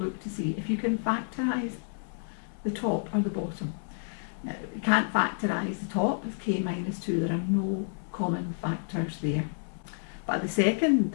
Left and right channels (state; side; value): silent; right; digital silence